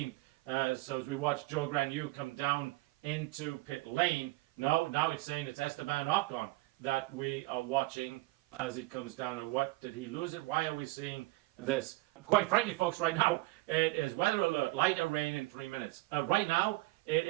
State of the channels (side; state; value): left; quieter; 21.6 dB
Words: So as we watch Joe Granu come down into pit lane, now it's saying it's Esteban Ocon that we are watching as he comes down. And what, did he lose it? Why are we seeing this? Quite frankly, folks, right now, it is weather alert, lighter rain in 3 minutes. Right now,